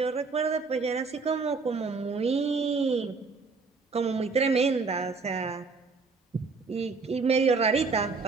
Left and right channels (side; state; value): left; quieter; 4.5 dB